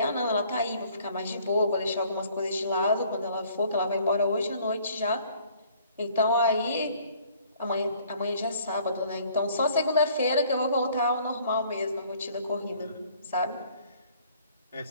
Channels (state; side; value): inverted; both; correlation -0.58